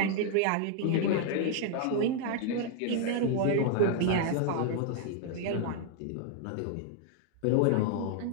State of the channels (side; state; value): both; different; correlation 0.00